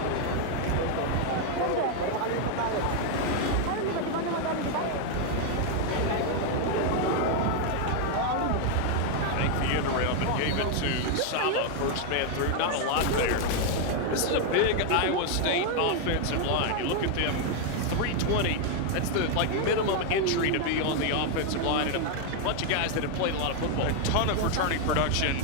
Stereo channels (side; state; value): both; different; correlation 0.00